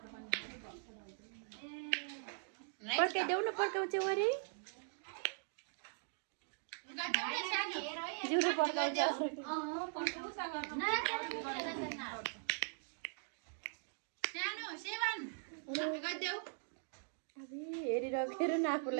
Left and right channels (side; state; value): left; silent; digital silence